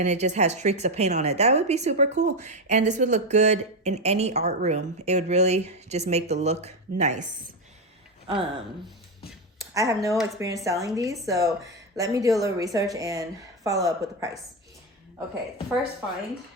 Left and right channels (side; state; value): both; normal; correlation 0.09